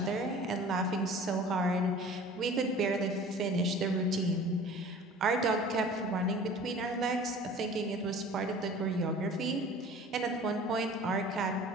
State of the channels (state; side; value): normal; both; correlation 0.44